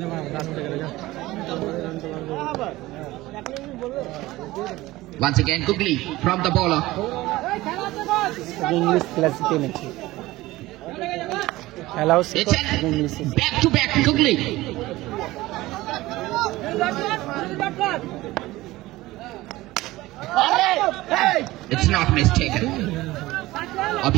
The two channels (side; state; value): left; quieter; 18.3 dB